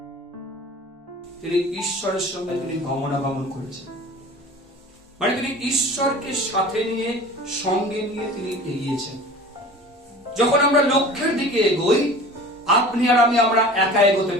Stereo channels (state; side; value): normal; both; correlation 0.41